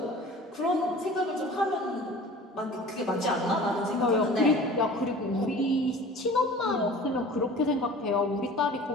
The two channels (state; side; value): normal; both; correlation 0.43